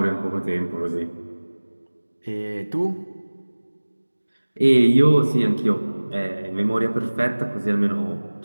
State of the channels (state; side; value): inverted; both; correlation -1.00